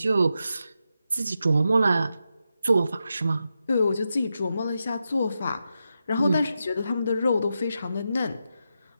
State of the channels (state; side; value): inverted; both; correlation -0.87